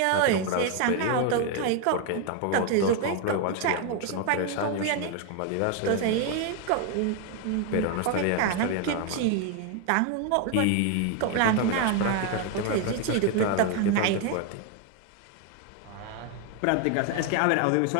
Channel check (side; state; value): both; different; correlation 0.01